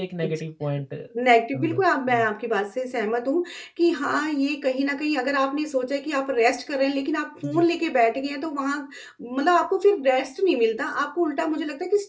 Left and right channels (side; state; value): both; identical; correlation 1.00